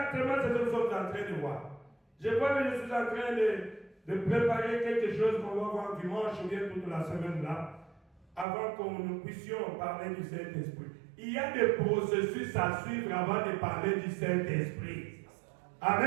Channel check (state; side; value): drops out; left; at 8.5 s